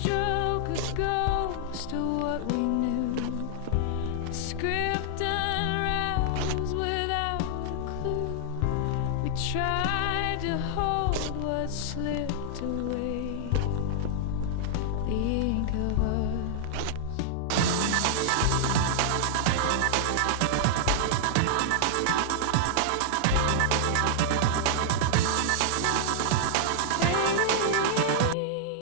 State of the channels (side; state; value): both; different; correlation -0.01